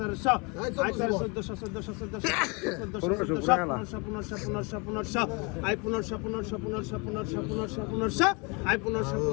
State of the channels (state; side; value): quieter; right; 30.1 dB